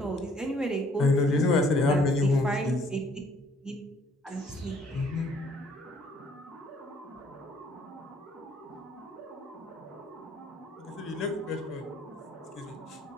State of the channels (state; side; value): normal; both; correlation 0.61